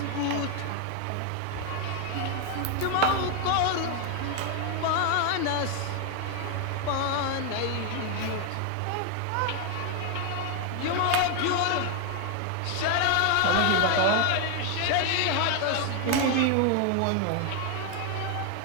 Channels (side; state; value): both; different; correlation 0.00